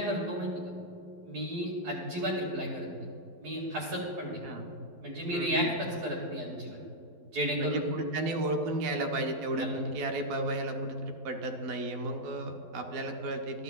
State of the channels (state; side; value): late; left; 12 ms